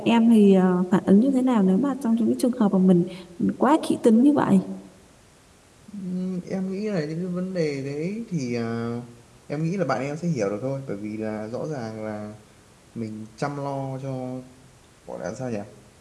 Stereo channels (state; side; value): identical; both; correlation 1.00